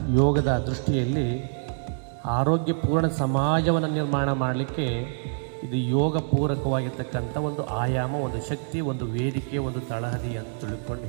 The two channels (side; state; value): left; silent; digital silence